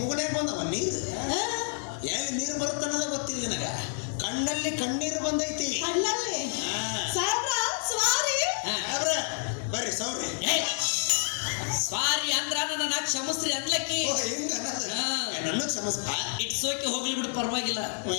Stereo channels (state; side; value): silent; right; 59 dB below the other